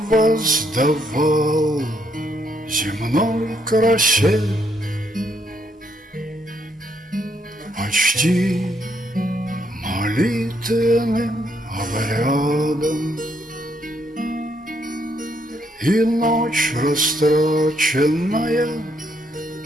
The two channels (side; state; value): both; normal; correlation 0.73